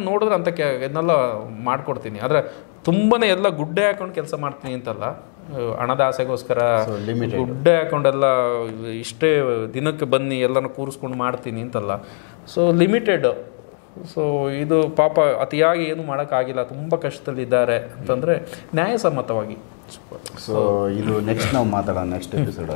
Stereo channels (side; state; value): right; silent; digital silence